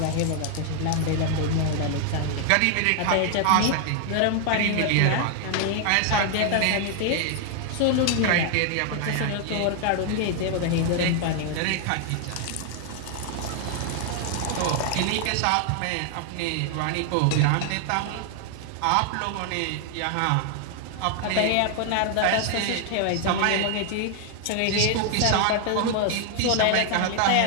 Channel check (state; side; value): different; both; correlation 0.00